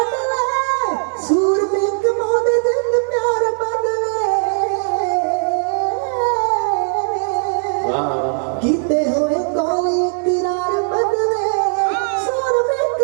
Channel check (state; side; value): silent; left; 67 dB below the other